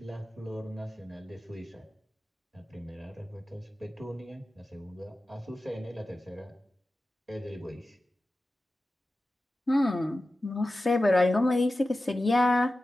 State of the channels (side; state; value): both; normal; correlation 0.94